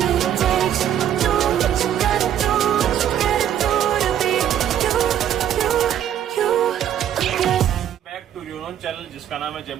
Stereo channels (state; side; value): quieter; left; 10.3 dB